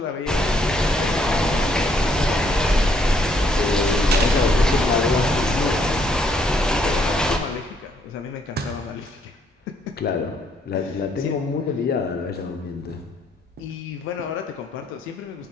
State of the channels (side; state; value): both; normal; correlation 0.70